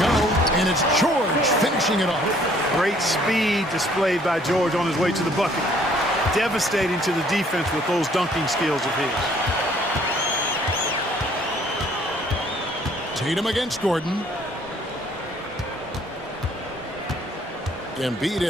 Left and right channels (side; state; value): both; normal; correlation 0.60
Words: go. And it's George finishing it off. Great speed displayed by George on his way to the bucket. Devastating to the defense with those dunking skills of his. Tatum against Gordon. Embiid